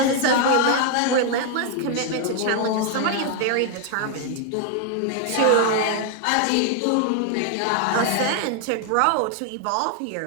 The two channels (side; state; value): both; different; correlation 0.00